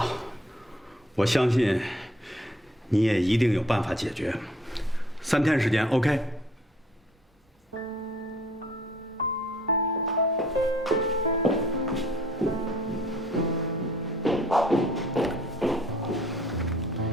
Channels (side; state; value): both; normal; correlation 0.58